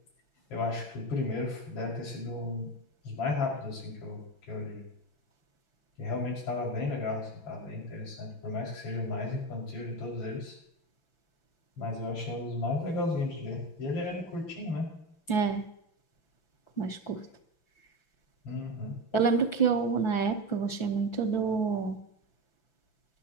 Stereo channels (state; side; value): late; right; 6.0 ms